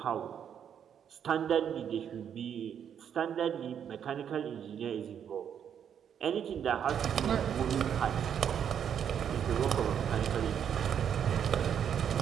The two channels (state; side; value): quieter; left; 8.5 dB